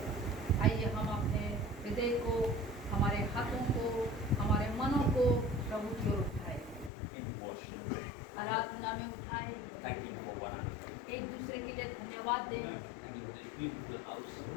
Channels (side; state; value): right; drops out; at 6.9 s